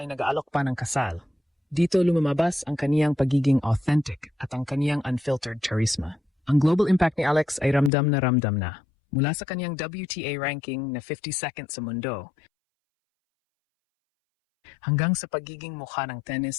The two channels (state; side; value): drops out; right; at 7.9 s